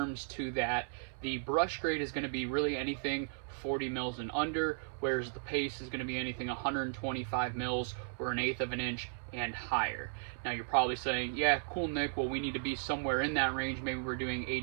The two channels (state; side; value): silent; left; 54 dB below the other